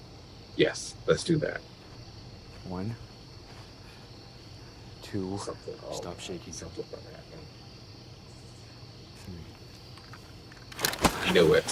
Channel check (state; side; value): identical; both; correlation 1.00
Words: Yes, let's do that. 1, 2, Something. Stop shaking. Something about that. 3. I knew it.